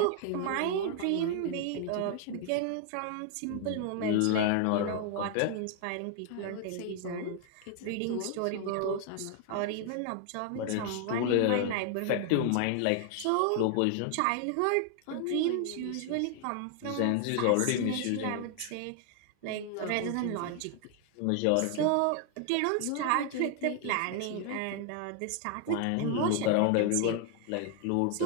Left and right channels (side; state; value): both; different; correlation 0.00